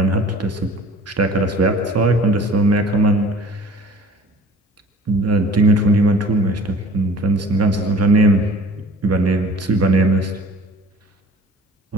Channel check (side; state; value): both; normal; correlation 0.47